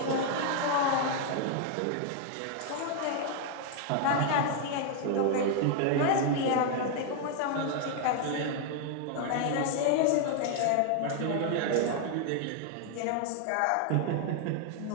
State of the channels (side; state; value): both; different; correlation 0.00